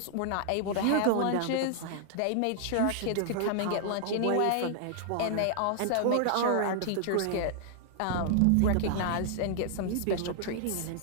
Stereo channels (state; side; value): different; both; correlation -0.01